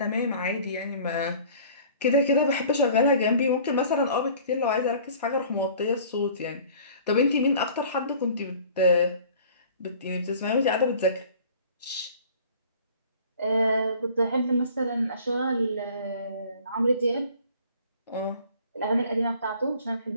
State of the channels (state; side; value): inverted; both; correlation -0.49